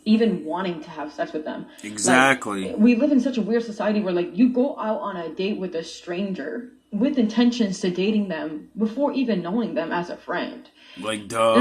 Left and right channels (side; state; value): both; identical; correlation 1.00